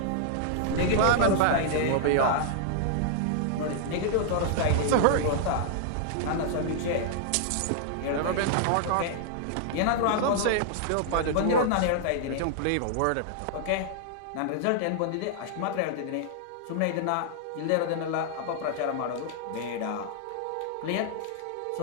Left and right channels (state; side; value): different; both; correlation -0.01